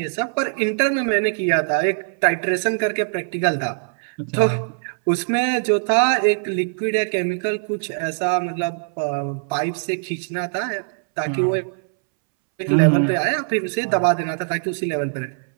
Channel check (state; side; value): silent; left; 64 dB below the other